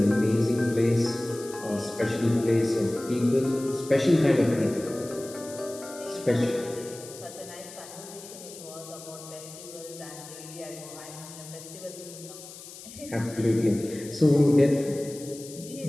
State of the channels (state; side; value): noise; left; hiss, 15 dB below the sound